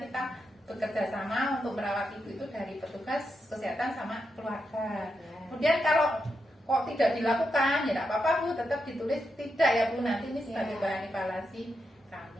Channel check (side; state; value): both; normal; correlation 0.85